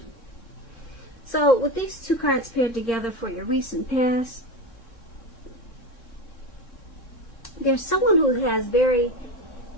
So with these two cards paired together for your recent past, there's someone who has very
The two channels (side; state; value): right; late; 3.6 ms